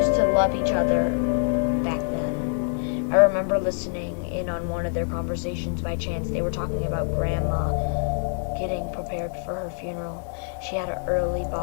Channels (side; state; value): right; silent; 59 dB below the other